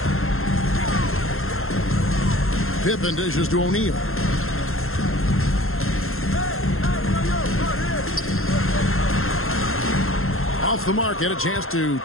Pippen dishes to O'Neal. Off the mark, had a chance to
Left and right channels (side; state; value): right; late; 0.61 ms